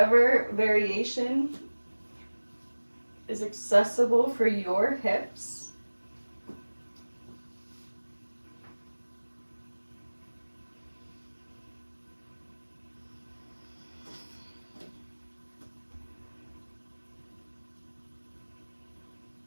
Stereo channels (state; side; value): inverted; both; correlation -1.00